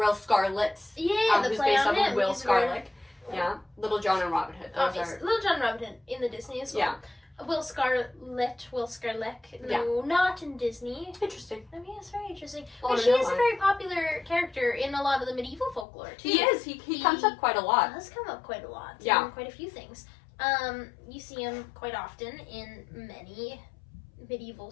Scarlet, the who's play based on off of him. Will He's very- Scarlet. Yeah, Little John and Robin Hood. Those Obviously, are Little John Robin in the Disney as well. yeah. Will Scarlet. No, not in Disney. Interesting. I mean, it's very interesting. I But wanna she know is a why. very popular character in a lot of the medieval folklore too. He is. He comes up quite a lot. Does come up quite a lot. Yeah. In quite a few things. You see him quite often in many medieval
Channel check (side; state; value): right; drops out; at 15.9 s